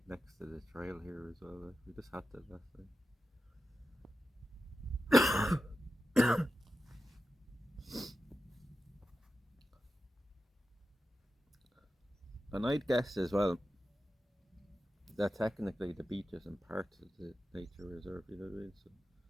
next to the trail here as well. Like, we just had to last night. And I'd guess as well that technically the beach isn't part of the nature reserve, you know what I mean? So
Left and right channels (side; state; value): both; normal; correlation 0.91